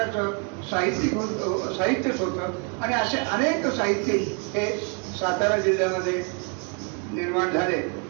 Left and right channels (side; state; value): left; quieter; 36.5 dB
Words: साहित्यच होतं. आणि असे अनेक साहित्यिक हे सातारा जिल्ह्यामध्ये निर्माण झाले.